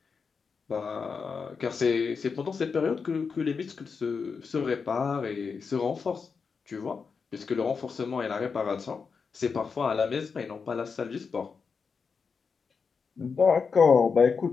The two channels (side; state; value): right; quieter; 5.4 dB